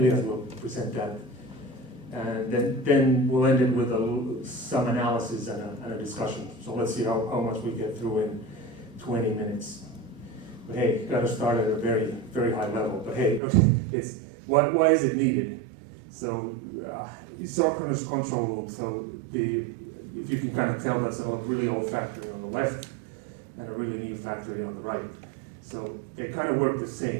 present that. And then we'll end it with some analysis and a discussion. So let's see how much we get through in 20 minutes. But hey, got to start at a very, very high level. But hey, it's why is it needed? So synchronous control loop. So if you can kind of tell, that's a really old factory on the left and a really new factory on the right. So they kind of work the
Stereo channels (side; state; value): left; drops out; at 13.4 s